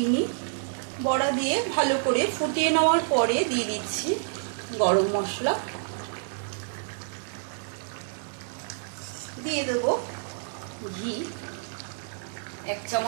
বড়া দিয়ে ভালো করে ফুটিয়ে নেওয়ার পরে দিয়ে দিচ্ছি গরম মশলা। দিয়ে দেব ঘি, 1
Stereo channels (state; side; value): silent; left; digital silence